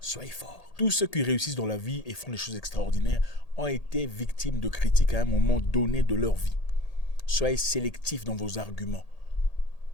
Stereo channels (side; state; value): right; late; 1.8 ms